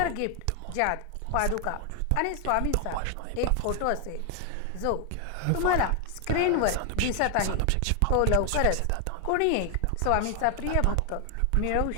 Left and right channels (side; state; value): both; different; correlation 0.00